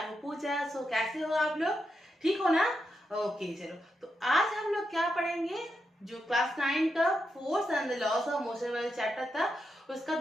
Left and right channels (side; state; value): both; normal; correlation 0.85